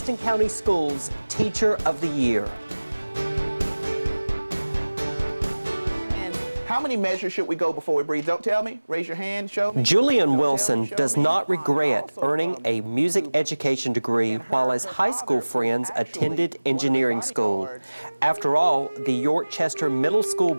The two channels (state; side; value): inverted; both; correlation -1.00